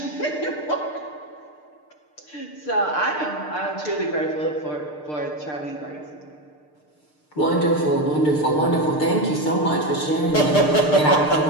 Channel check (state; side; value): late; right; 6.7 ms